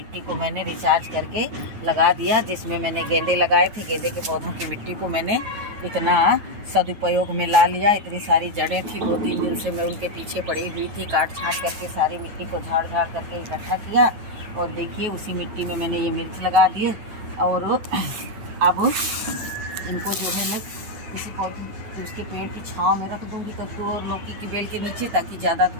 को मैंने रिचार्ज करके लगा दिया, जिसमें मैंने गेंदे लगाए थे। गेंदे के पौधों की मिट्टी को मैंने इतना सदुपयोग में ला लिया। इतनी सारी जड़ें थी, 2-3 दिन से मैं उनके पीछे पड़ी हुई थी। काट छाँट करके सारी मिट्टी को झाड़ झाड़ करके इकट्ठा किया, और देखिए उसी मिट्टी में मैंने ये मिर्च लगा दिए। और अब इनको जो है मैं किसी पौधे उसके पेड़ की छांव में रख दूंगी, कद्दू और लौकी की बेल के नीचे, ताकि ज़्यादा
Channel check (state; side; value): late; left; 9.3 ms